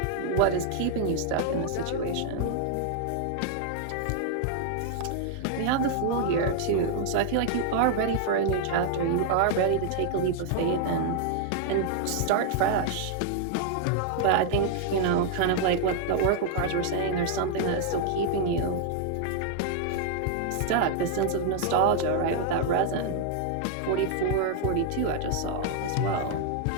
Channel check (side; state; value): both; different; correlation 0.00